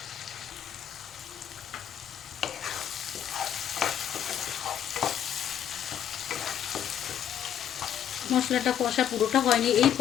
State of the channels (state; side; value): quieter; right; 9.8 dB